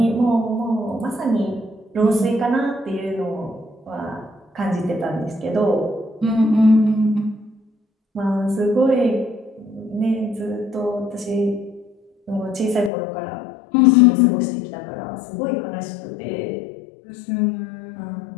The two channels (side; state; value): right; drops out; at 12.9 s